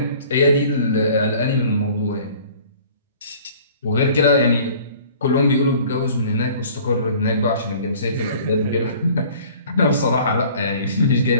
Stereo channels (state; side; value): inverted; both; correlation -0.50